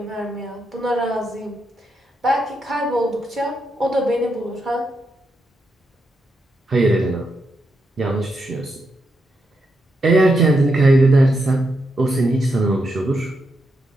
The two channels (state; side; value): normal; both; correlation 0.83